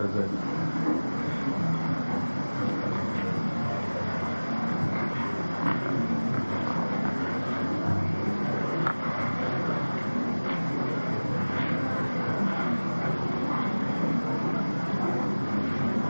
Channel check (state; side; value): inverted; both; correlation -1.00